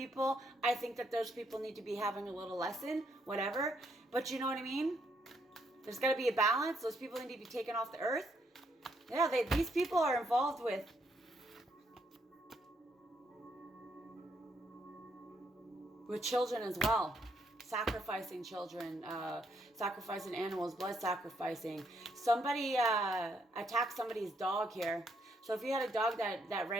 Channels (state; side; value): normal; both; correlation 0.74